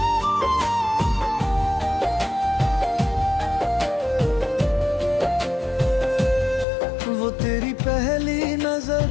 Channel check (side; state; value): right; drops out; at 6.7 s